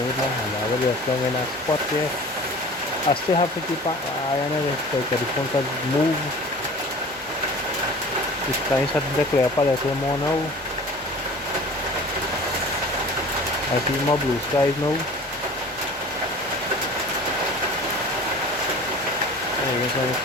with my hand. I have it just in a spot there. I still have to keep an eye on it because the phone can move. The sky is starting to clear up a little more now. I see more blue skies now. I guess I'm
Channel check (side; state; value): both; normal; correlation 0.42